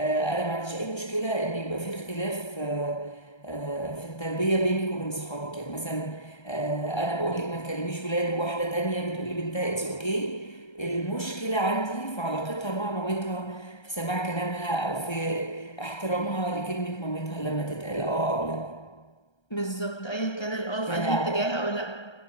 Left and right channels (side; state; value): right; late; 1.3 ms